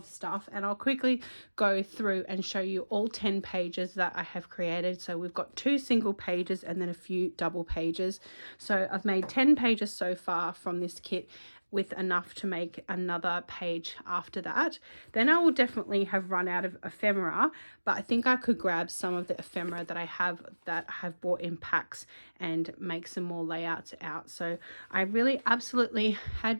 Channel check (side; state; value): both; inverted; correlation -1.00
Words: stuff, and I'll quickly go through and show you all 10 pages that I have created. So we've got 2 single pages and then a few double pages. So I've made 10 pages so far from this kit, with enough to make another page after that. Then I will definitely have run out of ephemera, but I think I could grab some of the ephemera that I have bought in packs and make some more layouts out. So I really absolutely